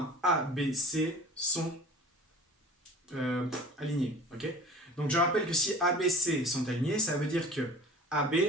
A, B, C sont alignés. Okay, donc je rappelle que si A, B, C sont alignés, ça veut dire que AB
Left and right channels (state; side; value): normal; both; correlation 0.42